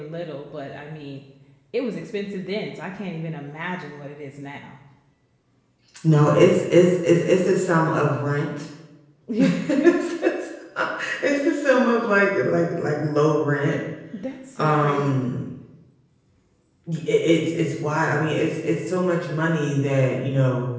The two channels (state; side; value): identical; both; correlation 1.00